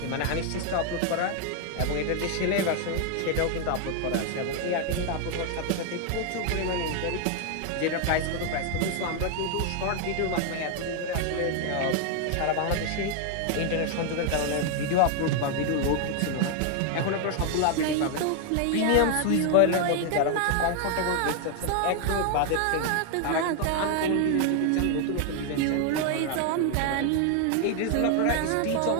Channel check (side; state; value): both; different; correlation 0.00